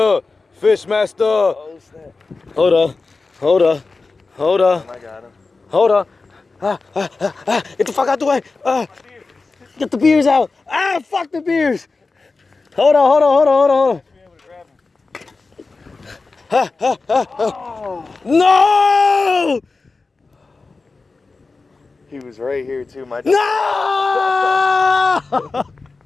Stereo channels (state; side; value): quieter; right; 3.9 dB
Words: Fish master. Oh, snap. Hold up. Hold up. Hold up. I got him. Hold up. Get the fuck out the way. Get the beers out. Fuck the beers. Hold on, hold on, hold on, hold on, hold on. No! He was right here too. My No!